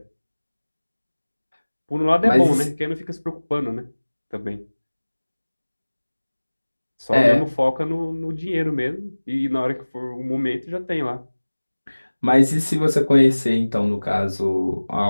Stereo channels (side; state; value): both; inverted; correlation -1.00